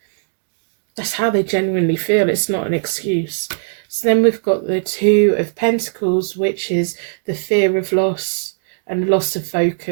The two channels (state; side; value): silent; left; digital silence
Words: That's how they genuinely feel. It's not an excuse. So then we've got the Two of Pentacles, which is the fear of loss and loss of